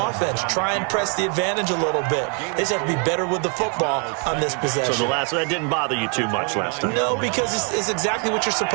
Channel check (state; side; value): quieter; left; 39.3 dB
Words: Try and press the advantage a little bit. They just have to be better with the football on this possession. So that didn't bother you too much last time? No, because it's exactly what you're